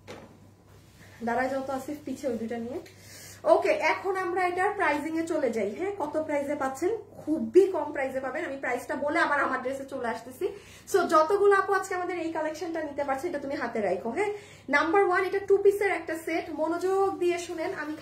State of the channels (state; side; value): identical; both; correlation 1.00